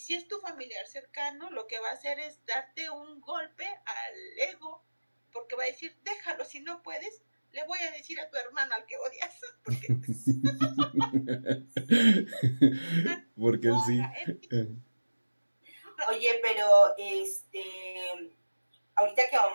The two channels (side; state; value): both; inverted; correlation -1.00